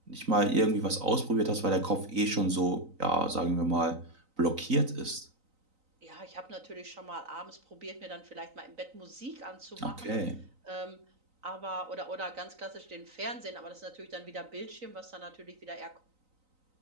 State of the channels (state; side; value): late; left; 3.9 ms